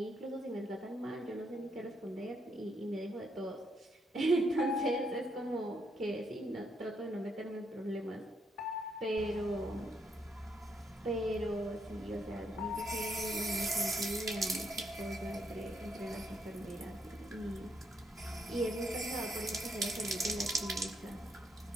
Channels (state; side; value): normal; both; correlation 0.76